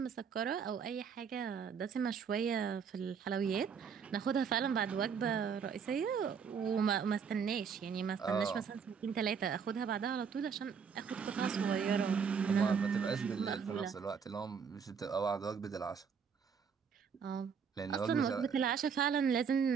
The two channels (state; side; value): quieter; left; 6.6 dB